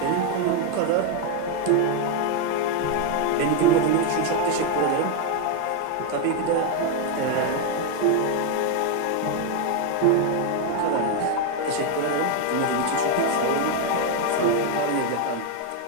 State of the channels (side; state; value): both; different; correlation 0.01